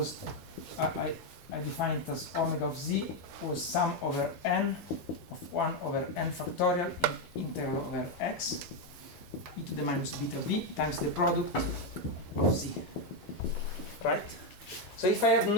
I defined it as omega of z was sum over n of 1 over n factorial in integral over x e to the minus beta v times the product of z. Right? So if I have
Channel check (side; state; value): both; normal; correlation 0.05